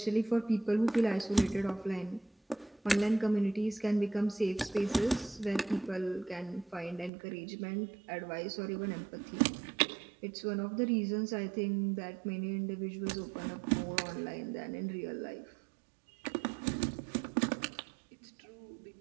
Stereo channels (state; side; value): drops out; left; at 7.1 s